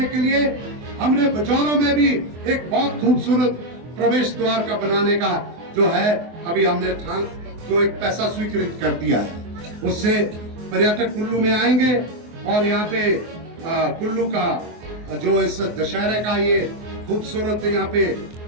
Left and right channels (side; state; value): left; late; 24 ms